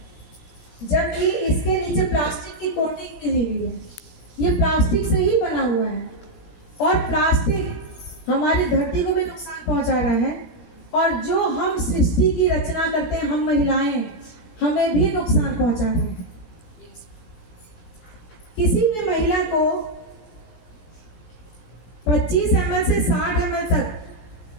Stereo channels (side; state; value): right; late; 16 ms